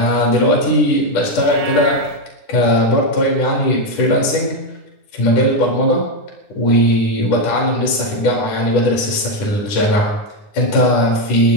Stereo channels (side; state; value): right; late; 10 ms